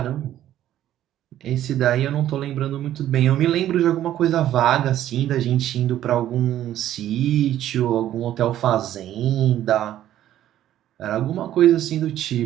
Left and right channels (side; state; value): left; quieter; 12.3 dB